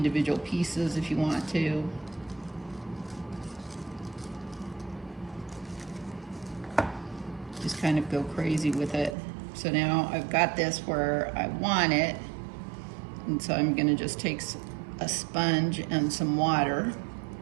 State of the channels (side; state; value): left; drops out; at 9.2 s